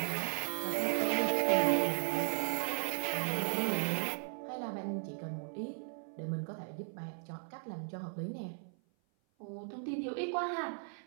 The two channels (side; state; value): left; silent; 54 dB below the other